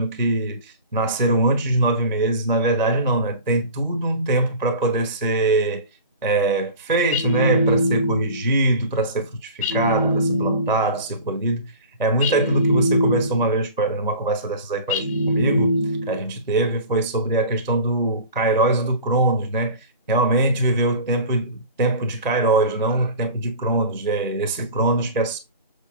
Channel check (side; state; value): both; inverted; correlation -0.38